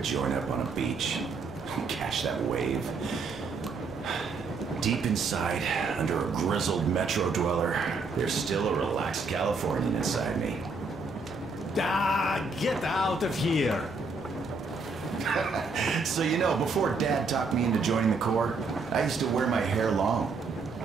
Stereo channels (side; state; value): left; quieter; 4.1 dB